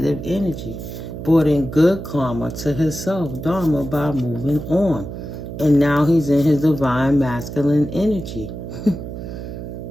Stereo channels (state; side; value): noise; right; hum, 9 dB below the sound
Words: energy. Brought in good karma to himself, Dharma, by moving on. And now he's in his divine masculine energy.